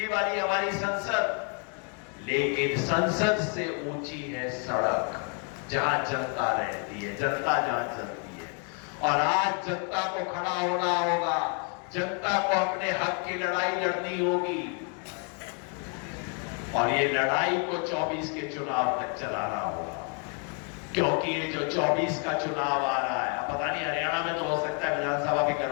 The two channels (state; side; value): quieter; right; 39.3 dB